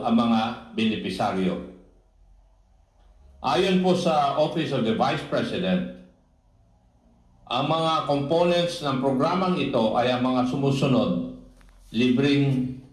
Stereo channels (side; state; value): both; identical; correlation 1.00